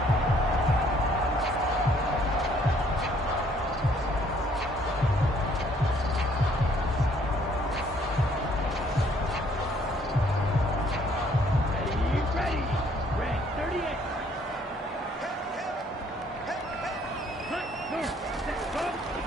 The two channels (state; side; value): normal; both; correlation 0.63